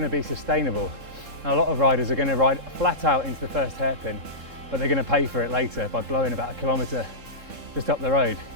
to be sustainable. Now, a lot of riders are going to ride flat out into the first hairpin, but they're going to pay for it later by blowing about 1 kilometre just up the road.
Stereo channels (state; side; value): late; left; 3.7 ms